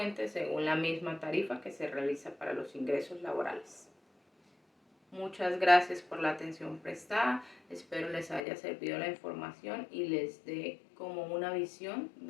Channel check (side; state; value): right; drops out; at 8.4 s